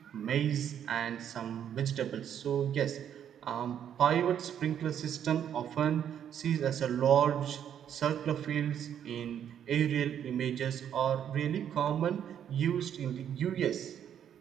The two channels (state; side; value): quieter; left; 9.3 dB